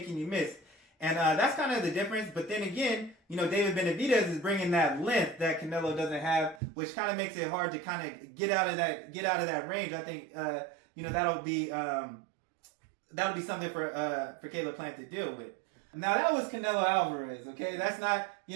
you miss. And that's kind of the difference. But then again, David Benavidez is bringing that length that Canelo doesn't have, which kind of makes it hard to kind of get out of that range. I think that'll be something for Caleb Plant to deal with. Now that was Canelo Alvarez, okay? That's not,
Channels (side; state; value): left; drops out; at 6.6 s